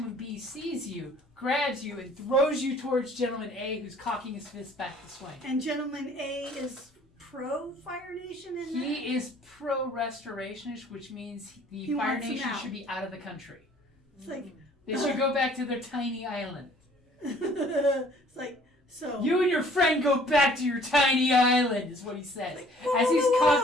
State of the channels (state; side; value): normal; both; correlation 0.56